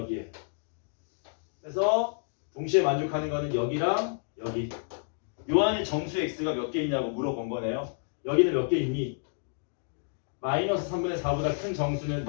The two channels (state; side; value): silent; right; digital silence